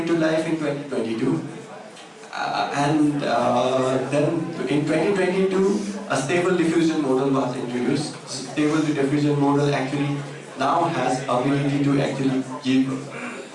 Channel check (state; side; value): identical; both; correlation 1.00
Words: to life in 2022. Then in 2022, a stable diffusion model was introduced. Stable diffusion model actually now has ability to actually give